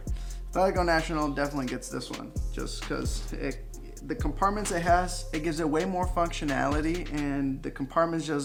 Athletico National definitely gets this one just because the compartments it has, it gives it way more functionality, and the compartments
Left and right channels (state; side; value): identical; both; correlation 1.00